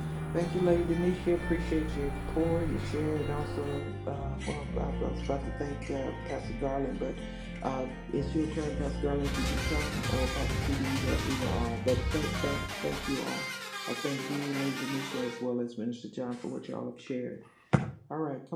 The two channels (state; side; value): identical; both; correlation 1.00